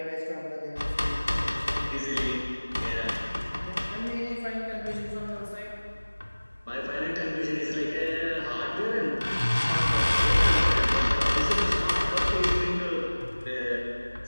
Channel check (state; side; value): inverted; both; correlation -1.00